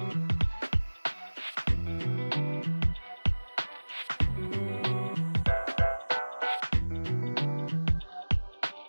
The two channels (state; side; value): inverted; both; correlation -1.00